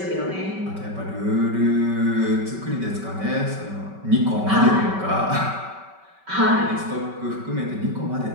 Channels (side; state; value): left; late; 5.2 ms